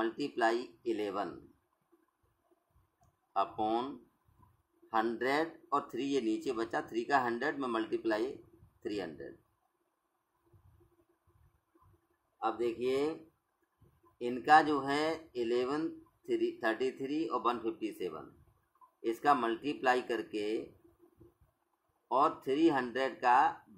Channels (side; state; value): both; identical; correlation 1.00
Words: 11 अपॉन 100, और 3 ये नीचे बचा, 3 का 100 में मल्टीप्लाई 300। अब देखिए इनका जो है 11 33 और 157, इसका मल्टीप्लाई करके और 300 का